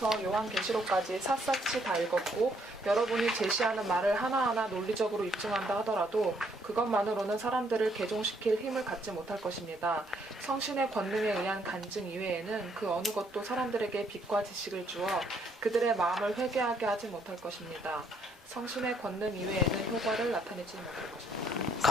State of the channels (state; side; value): normal; both; correlation 0.69